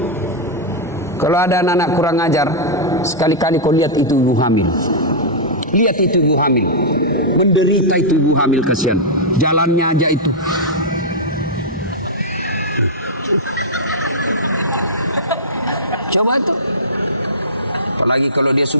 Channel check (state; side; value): normal; both; correlation -0.10